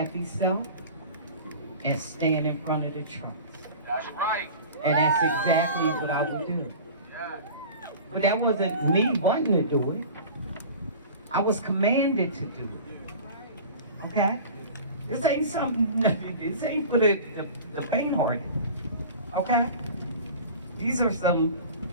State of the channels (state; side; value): inverted; both; correlation -0.38